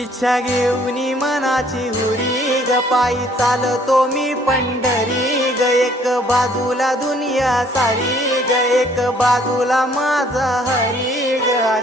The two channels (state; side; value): normal; both; correlation 0.60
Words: इच्छा घेऊनी मनाची हुरी ग पायी चालतो मी पंढरी ग एक बाजूला दुनिया सारी ग एक बाजूला माझा हरी ग